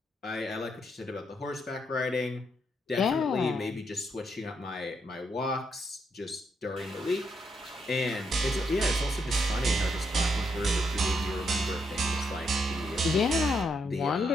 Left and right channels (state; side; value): normal; both; correlation 0.78